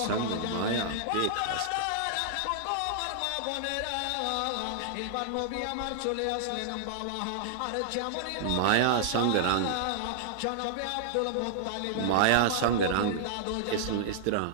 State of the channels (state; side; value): different; both; correlation -0.01